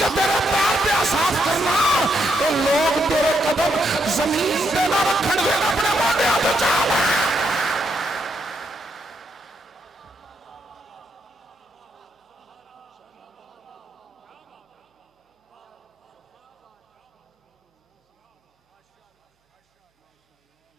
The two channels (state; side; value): normal; both; correlation 0.79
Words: तेरे पैर पे साफ करना, ये लोग तेरे कदम जमीन पे ना रखन देना, अपने मोटे हाथ चाल है।